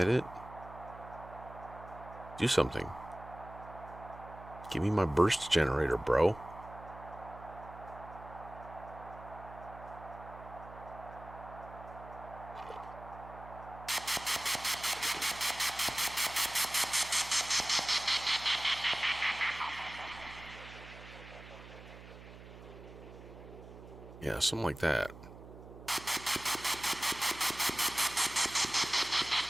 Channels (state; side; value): noise; right; hum, 16 dB below the sound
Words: it? Do something. Give me my burst generator, bro. Yeah, something like that.